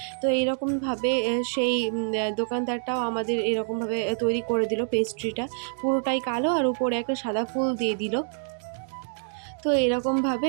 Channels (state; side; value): silent; left; digital silence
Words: তো এইরকমভাবে সেই দোকানদারটাও আমাদের এরকমভাবে তৈরি করে দিল পেস্ট্রিটা, পুরোটাই কালো আর উপরে একটা সাদা ফুল দিয়ে দিল। তো এরকমভাবে